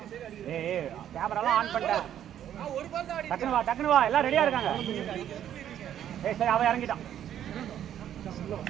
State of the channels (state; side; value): quieter; left; 10.6 dB